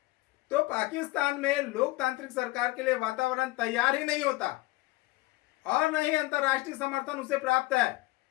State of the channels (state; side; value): quieter; right; 20.1 dB